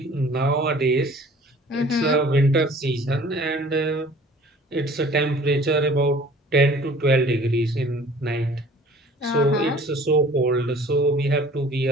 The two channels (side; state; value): both; normal; correlation 0.50